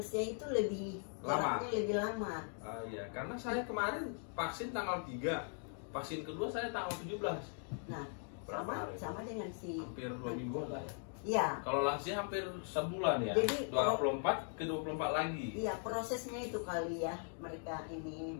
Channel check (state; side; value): silent; right; 51 dB below the other